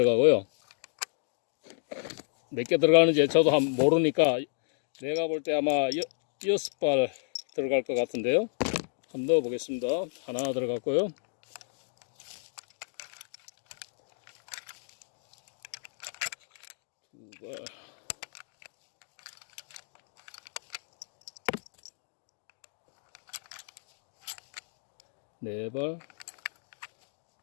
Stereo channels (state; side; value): silent; right; digital silence